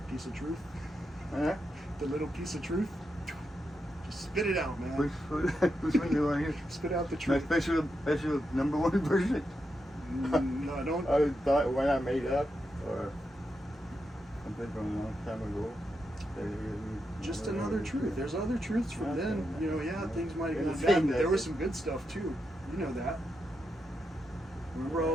Piece of truth. Huh? The little piece of truth. Just spit it out, man. Which one do you want to hear? Spit out the My truth. special number one version. No, I don't. I thought when I made up or something from a long time ago. Just another truth. There's other truths from then. You know, yeah, things might have gone It's bad, saying but there that- was some good stuff too. You know that. Remember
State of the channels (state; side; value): normal; both; correlation 0.85